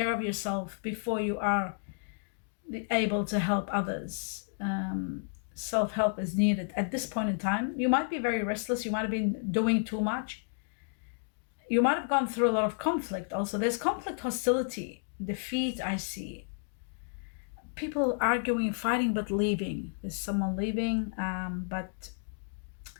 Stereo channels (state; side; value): silent; right; digital silence